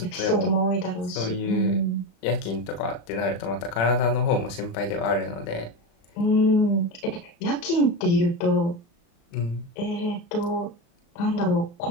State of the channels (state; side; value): late; right; 35 ms